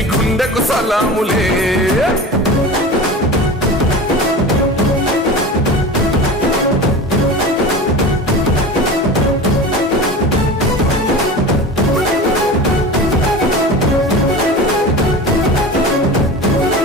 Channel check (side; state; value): both; normal; correlation 0.32